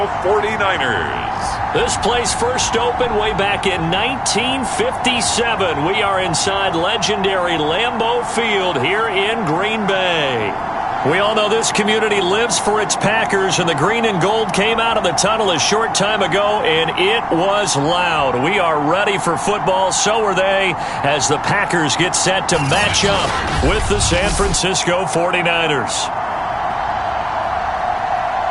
49ers. This place first opened way back in 1957. We are inside legendary Lambeau Field here in Green Bay. We all know this community lives for its Packers, and the green and gold came out of the tunnel a short time ago, and it was loud. We are ready for football, so are they, as the Packers get set to match up with the San Francisco 49ers.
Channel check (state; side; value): identical; both; correlation 1.00